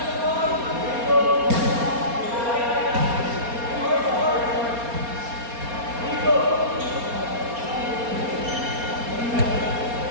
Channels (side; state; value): left; late; 4.3 ms